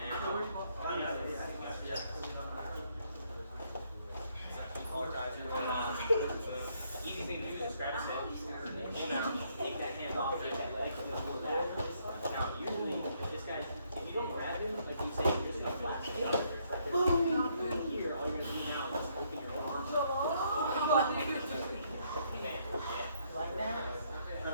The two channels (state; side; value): inverted; both; correlation -0.71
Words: Easy thing to do is grab a stick, pull down, take that hand off, take that leg, and then pull it back. Now, usually, if this guy, if you don't grab him, like you say, you're just going to flash it out. Here, all you're going to do now is just open your arm. Like that.